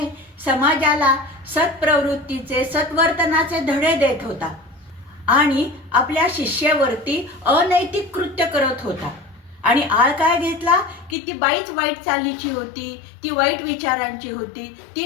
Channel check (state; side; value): drops out; right; at 11.2 s